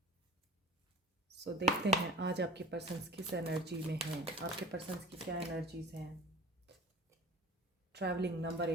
देखते हैं आज आपके पर्सन्स किस एनर्जी में हैं, आपके पर्सन्स की क्या एनर्जीज हैं। Travelling number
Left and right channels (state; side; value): normal; both; correlation 0.41